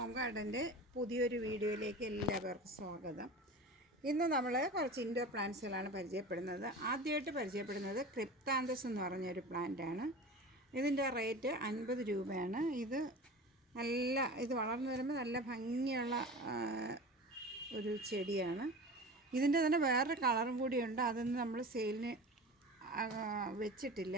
ഗാർഡൻ്റെ പുതിയൊരു വീഡിയോയിലേക്ക് എല്ലാവർക്കും സ്വാഗതം. ഇന്ന് നമ്മൾ കുറച്ച് ഇൻഡോർ പ്ലാന്റ്സുകളാണ് പരിചയപ്പെടുന്നത്. ആദ്യമായിട്ട് പരിചയപ്പെടുന്നത് ക്രിപ്താന്തസ് എന്ന് പറഞ്ഞൊരു പ്ലാന്റാണ്. ഇതിൻ്റെ റേറ്റ് 50 രൂപയാണ്. ഇത് വളർന്നു വരുമ്പോൾ നല്ല ഭംഗിയുള്ള ഒരു ചെടിയാണ്. ഇതിൻ്റെ തന്നെ വേറൊരു കളറും കൂടിയുണ്ട്, അതൊന്നും നമ്മൾ സെയിലിന്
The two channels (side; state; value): both; normal; correlation 0.34